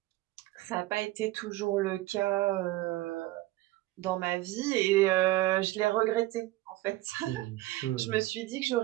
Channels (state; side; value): quieter; left; 17.6 dB